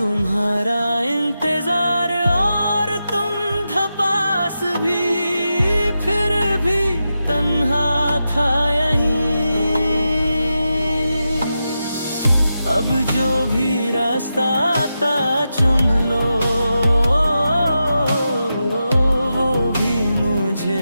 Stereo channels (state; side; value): inverted; both; correlation -0.89